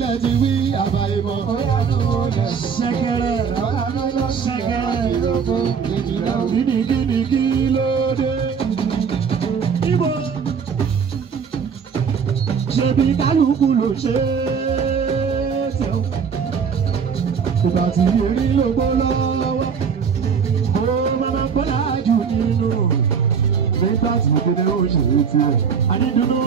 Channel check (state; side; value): quieter; left; 6.4 dB